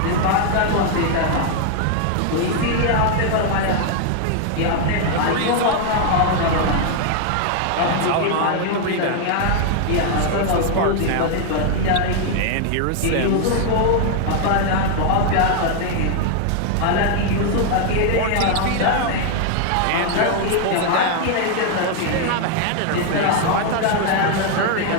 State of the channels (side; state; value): both; different; correlation 0.00